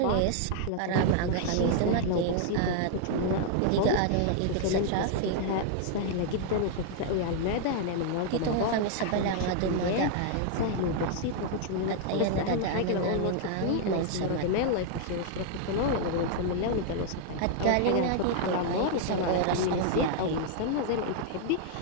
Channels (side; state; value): both; different; correlation -0.01